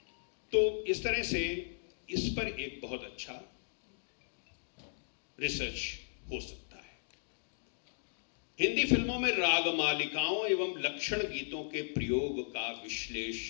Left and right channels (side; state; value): right; silent; digital silence